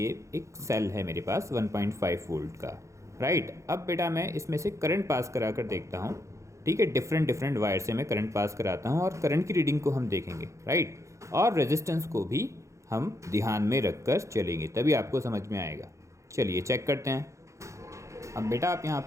एक सेल है मेरे पास 1.5 वोल्ट का। राइट, अब बेटा मैं इसमें से करंट पास करा कर देखता हूँ। ठीक है, डिफरेंट वायर से मैं करंट पास कराता हूँ और करंट की रीडिंग को हम देखेंगे। राइट, और रेजिस्टेंस को भी हम ध्यान में रखकर चलेंगे, तभी आपको समझ में आएगा। चलिए चेक करते हैं। अब बेटा आप यहाँ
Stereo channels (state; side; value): late; left; 0.15 ms